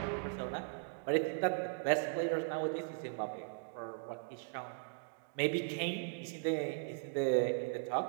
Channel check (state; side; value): silent; left; digital silence